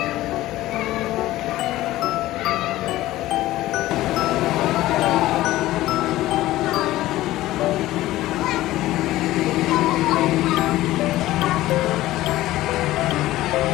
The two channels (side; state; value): right; quieter; 16.1 dB